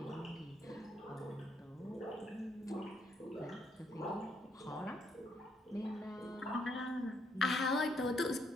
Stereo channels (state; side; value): normal; both; correlation 0.72